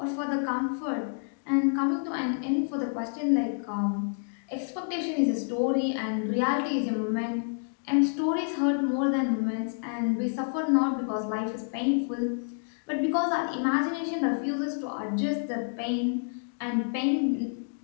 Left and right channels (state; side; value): silent; right; digital silence